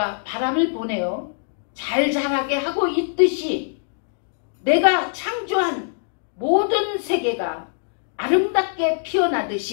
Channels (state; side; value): silent; right; 63 dB below the other